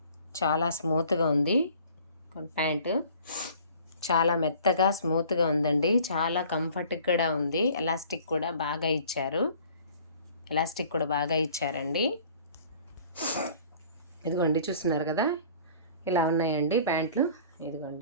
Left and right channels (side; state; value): both; inverted; correlation -0.51